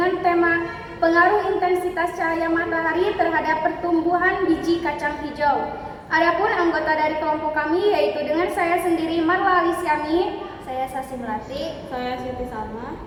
tema pengaruh intensitas cahaya matahari terhadap pertumbuhan biji kacang hijau. Adapun anggota dari kelompok kami yaitu dengan saya sendiri Marla Alisyami, saya Sasi Melati, saya Siti Salma,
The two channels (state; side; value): identical; both; correlation 1.00